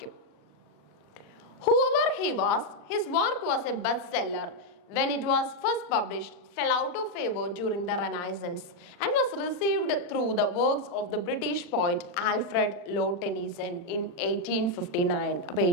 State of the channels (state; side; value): late; right; 40 ms